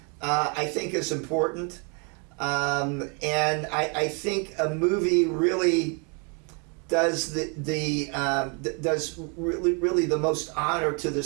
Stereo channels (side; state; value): left; quieter; 34.4 dB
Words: I think is important. And I think a movie really does does really the most honor to the